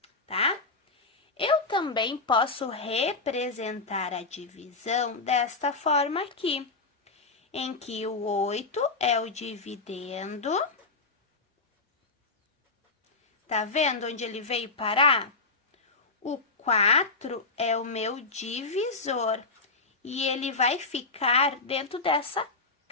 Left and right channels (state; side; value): quieter; right; 3.8 dB